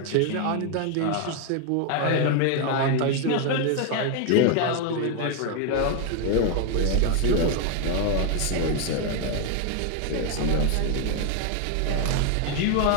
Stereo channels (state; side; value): different; both; correlation 0.01